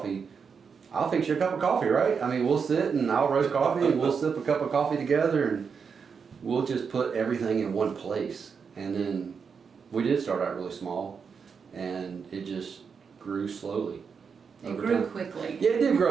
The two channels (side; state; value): left; quieter; 6.0 dB